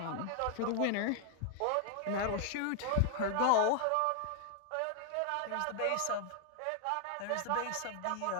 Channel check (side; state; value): both; different; correlation 0.00